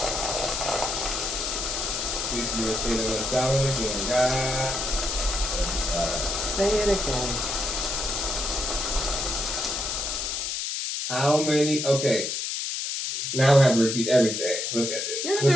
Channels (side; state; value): left; noise; hiss, 2 dB below the sound